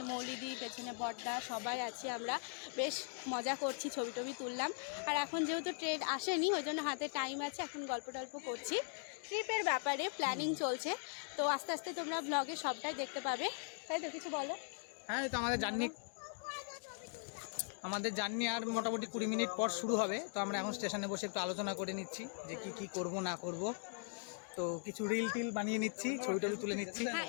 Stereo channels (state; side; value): silent; right; 51 dB below the other